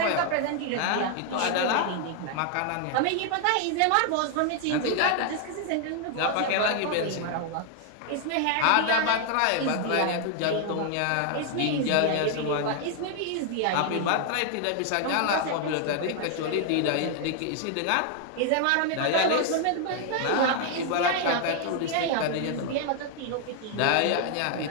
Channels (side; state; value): both; different; correlation 0.00